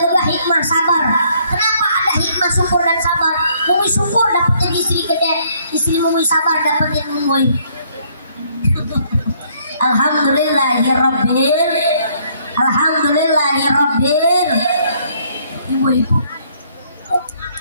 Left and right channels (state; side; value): inverted; both; correlation -0.66